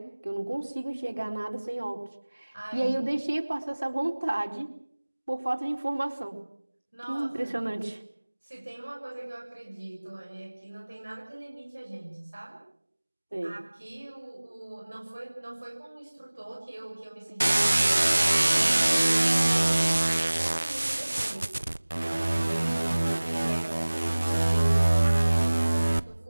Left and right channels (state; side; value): inverted; both; correlation -1.00